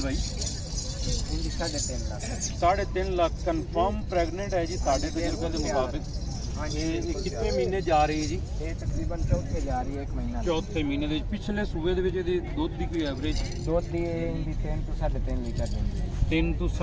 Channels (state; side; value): identical; both; correlation 1.00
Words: ਭਾਈ? इनकी 3.5 लाख। 3.5 ਲੱਖ ਕਨਫਰਮ ਪ੍ਰੈਗਨੈਂਟ ਹੈ ਜੀ ਸਾਡੇ ਤਜਰਬੇ ਦੇ ਮੁਤਾबिक। हाँ जी। ਇਹ ਕਿੰਨੇ ਮਹੀਨੇ ਜਾ ਰਹੀ ਹੈ ਜੀ? ये तकरीबन चौथे जा रही है, 1 महीना। ਚੌਥੇ ਮਹੀਨੇ ਦੇ ਵਿੱਚ। ਪਿਛਲੇ ਸੂਏ ਦੇ ਵਿੱਚ ਇਹਦੀ ਦੁੱਧ ਦੀ ਕੋਈ ਐਵਰੇਜ? दूध दी इनकी 3 तो 3.5 लीटर देंगे। 3 ਤੋਂ